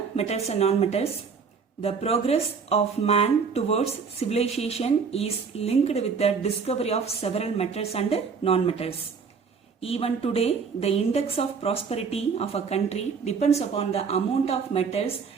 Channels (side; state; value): left; quieter; 5.6 dB